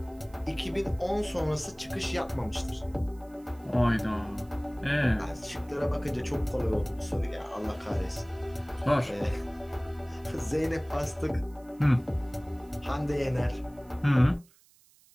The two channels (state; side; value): noise; right; hiss, 29 dB below the sound